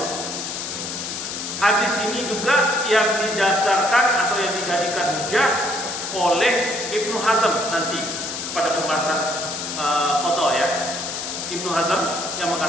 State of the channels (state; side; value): noise; left; hiss, 5 dB below the sound